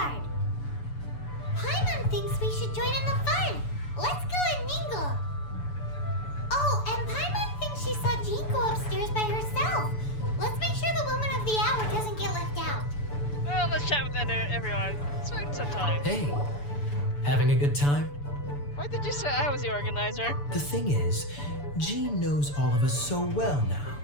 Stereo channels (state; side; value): late; right; 6.9 ms